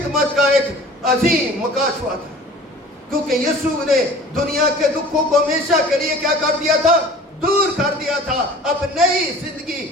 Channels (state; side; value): normal; both; correlation 0.45